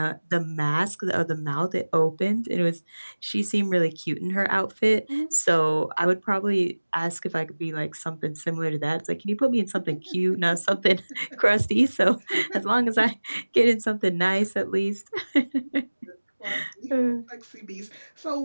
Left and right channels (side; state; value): both; inverted; correlation -1.00